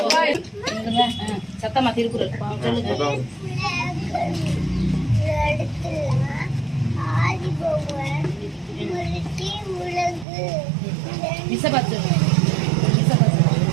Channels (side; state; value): left; drops out; at 10.2 s